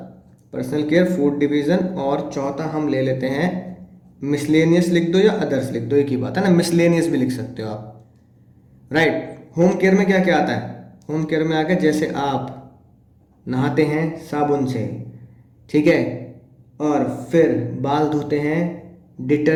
पर्सनल केयर, फूड डिवीजन। और चौथा हम ले लेते हैं मिसलेनियस, लिख दो या अदर्स लिख दो, एक ही बात है ना, मिसलेनियस भी लिख सकते हो आप। राइट। होम केयर में क्या क्या आता है? होम केयर में आगे जैसे आप नहाते हैं साबुन से, ठीक है, और फिर बाल धोते हैं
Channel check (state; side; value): identical; both; correlation 1.00